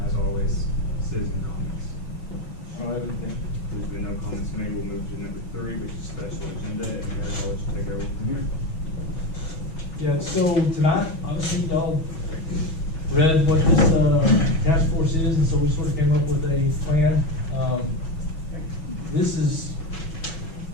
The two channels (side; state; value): right; late; 6.2 ms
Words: as always, citizen comments. I don't have anything. There's been no comments made. We'll move to number 3, which is special agenda, and Mayor, I'll let you take over from here. Yeah, so tonight, obviously, y'all read what this task force is, and so we sort of came up with a plan. This is